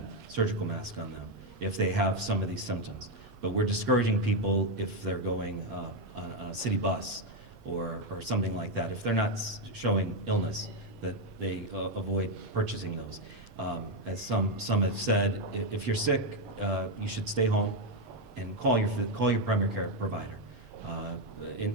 surgical mask on them, if they have some of these symptoms. But we're discouraging people if they're going on a city bus or something like that. If they're not showing illness, that they avoid purchasing those. As some have said, if you're sick, you should stay home and call your primary care provider.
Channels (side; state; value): both; normal; correlation 0.05